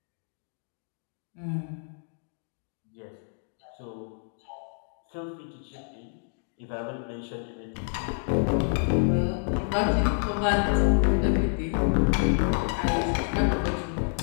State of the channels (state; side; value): silent; right; digital silence